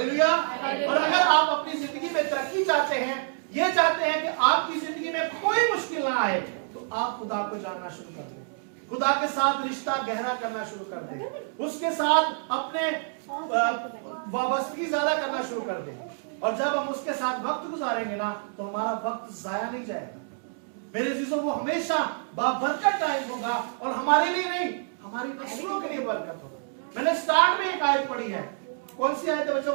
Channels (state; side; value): silent; left; digital silence